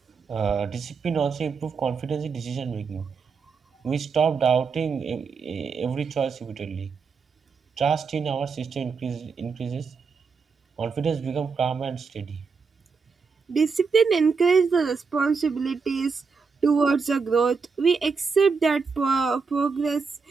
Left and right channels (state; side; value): quieter; left; 5.2 dB